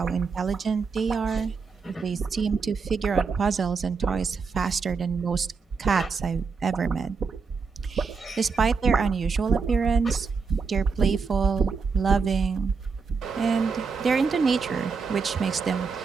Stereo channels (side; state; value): left; quieter; 5.1 dB